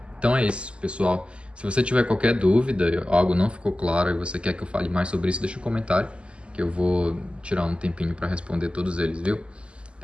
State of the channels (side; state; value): left; late; 0.054 ms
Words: Então é isso, pessoal. Se você tiver qualquer dúvida, algo não ficou claro e você quer que eu fale mais sobre isso, deixa um comentário, que eu vou tirar um tempinho para responder todos eles, viu?